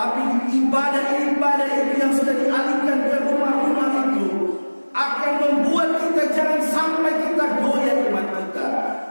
ibadah-ibadah itu yang sudah dialihkan ke rumah-rumah itu akan membuat kita jangan sampai kita goyah iman kita.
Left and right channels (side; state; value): both; inverted; correlation -1.00